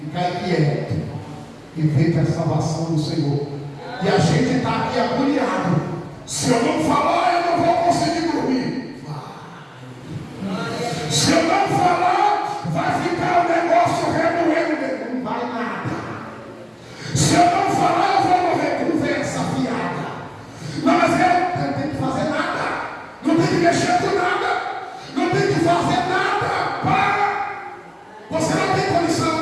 quieto e veja a salvação do Senhor. E a gente está aqui agoniado. Se eu não falar, eu não vou conseguir dormir. Vai. Se eu não falar, vai ficar o negócio remoendo. Não vai nada. Se eu não falar, eu vou morrer. Conversa fiada. Não, mas eu não tenho que fazer nada. Não tem que mexer com nada. Não tem que fazer nada. Para. Você não tem condição.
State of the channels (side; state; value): both; identical; correlation 1.00